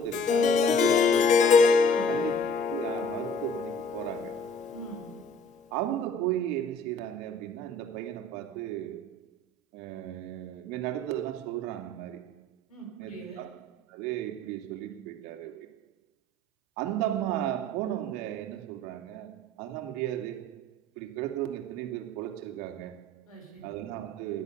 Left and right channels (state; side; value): normal; both; correlation 0.52